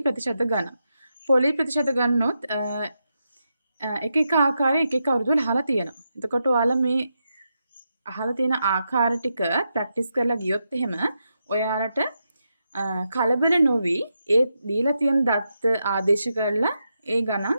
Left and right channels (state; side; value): inverted; both; correlation -0.85